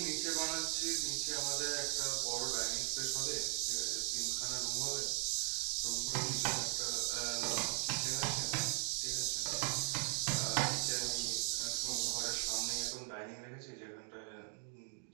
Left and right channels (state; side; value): silent; left; 52 dB below the other